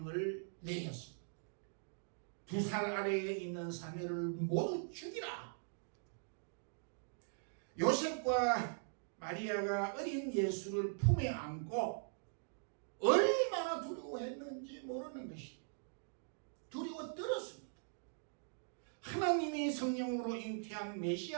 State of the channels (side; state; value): left; silent; digital silence